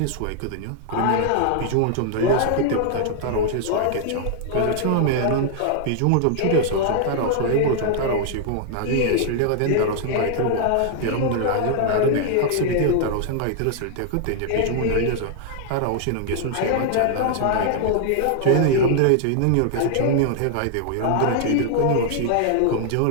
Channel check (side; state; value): both; different; correlation -0.01